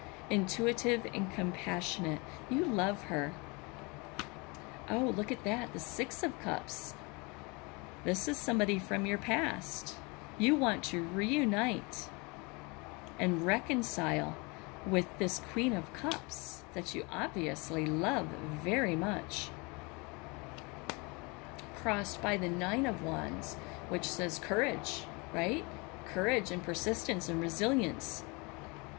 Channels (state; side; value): quieter; right; 28.5 dB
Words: intuitive and compassionate. You love her. Oh, look at that, the Six of Cups. This is somebody from your past. You want to reunite and reconcile with this Queen of Cups that you obviously love very much. Crossed by the Nine of Wands, which says courage, right? Courage and persistence and resilience.